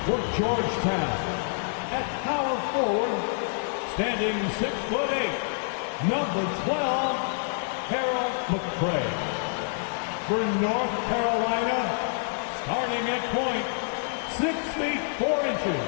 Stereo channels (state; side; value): silent; right; digital silence